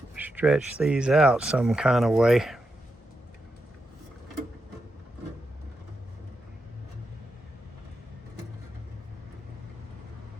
stretch these out some kind of way.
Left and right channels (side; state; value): both; normal; correlation 0.86